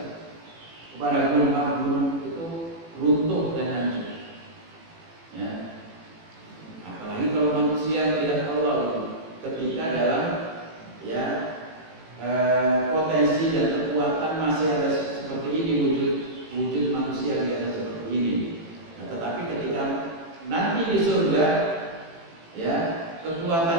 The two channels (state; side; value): late; left; 18 ms